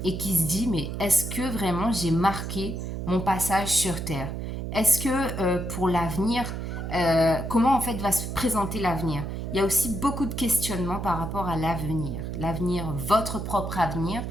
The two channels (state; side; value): noise; right; hum, 5 dB below the sound